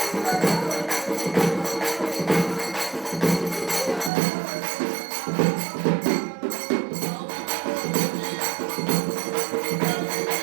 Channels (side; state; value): left; drops out; at 4.1 s